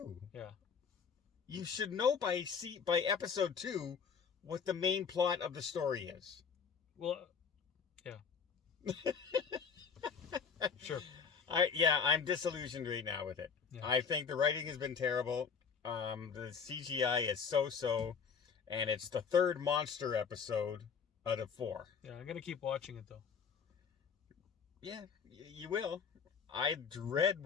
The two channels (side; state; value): right; quieter; 6.2 dB